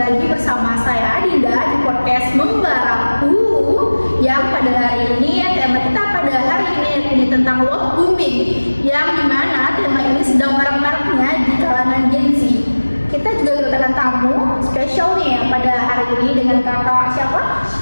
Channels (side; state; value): both; inverted; correlation -1.00